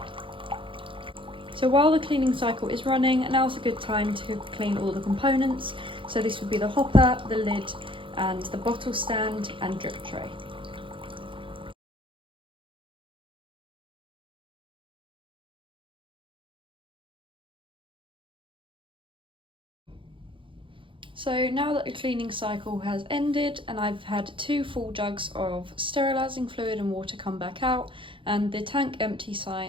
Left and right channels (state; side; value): late; left; 0.25 ms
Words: So while the cleaning cycle is running, now's a good time to clean all the components. So this would be the hopper, the lid, and the bottle stand and drip tray. So now that the cleaning cycle has ended and I've had 2 full jugs of sterilising fluid and water come back out and the tank empty